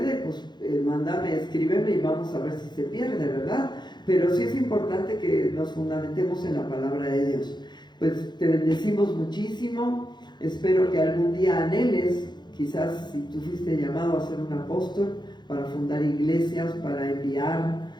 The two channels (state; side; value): late; right; 0.21 ms